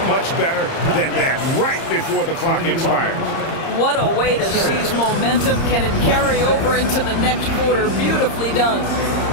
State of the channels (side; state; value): right; late; 30 ms